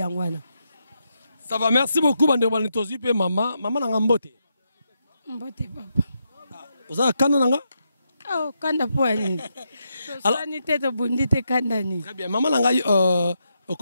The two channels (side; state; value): both; inverted; correlation -0.83